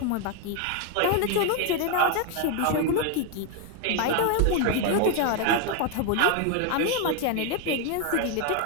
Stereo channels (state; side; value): different; both; correlation 0.01